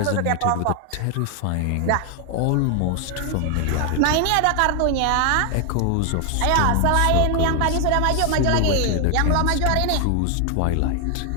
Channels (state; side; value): different; both; correlation 0.00